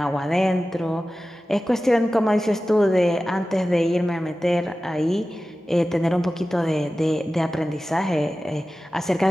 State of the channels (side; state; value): both; normal; correlation 0.95